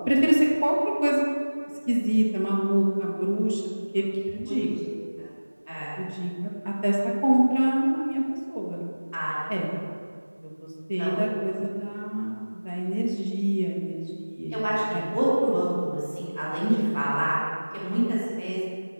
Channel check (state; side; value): inverted; both; correlation -1.00